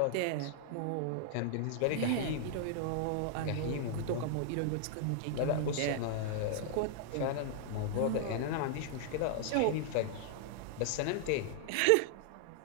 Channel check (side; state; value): both; different; correlation -0.01